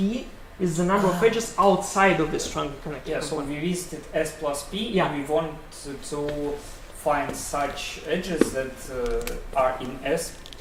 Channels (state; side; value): identical; both; correlation 1.00